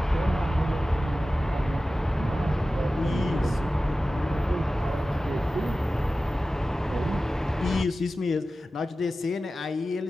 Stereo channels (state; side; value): normal; both; correlation 0.95